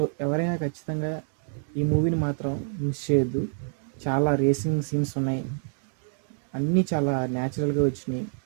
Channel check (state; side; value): silent; left; 61 dB below the other